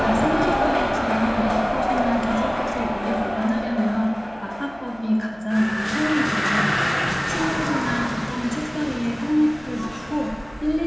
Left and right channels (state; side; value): noise; right; hum, 26 dB below the sound